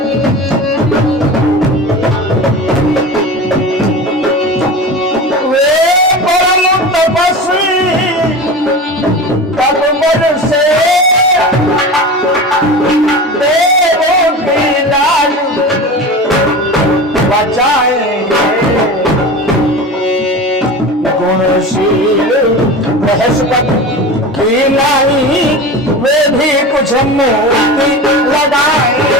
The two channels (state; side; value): normal; both; correlation 0.30